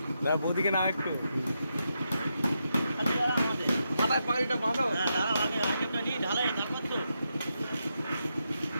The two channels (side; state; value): both; inverted; correlation -0.84